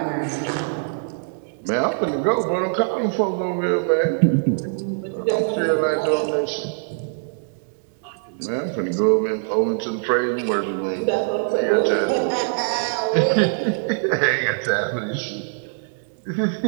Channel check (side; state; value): left; silent; 64 dB below the other